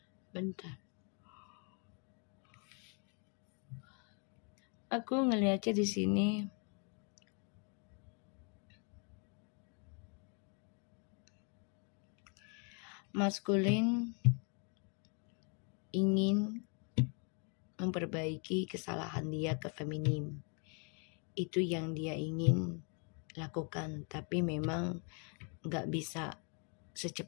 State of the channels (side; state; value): right; quieter; 37.8 dB